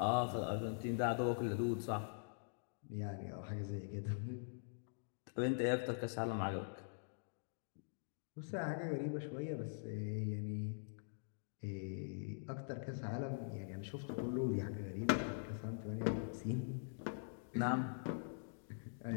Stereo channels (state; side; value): silent; right; digital silence